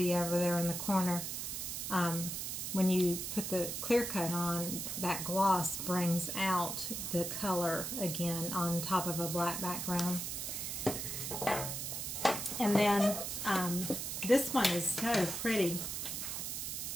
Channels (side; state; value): right; noise; hiss, 4 dB below the sound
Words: over there in the corner, when you put the clear coat on, that gloss brings out the color again on top of a black background. And then this one is so pretty.